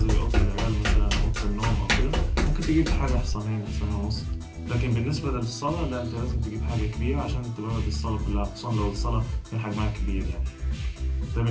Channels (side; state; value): both; identical; correlation 1.00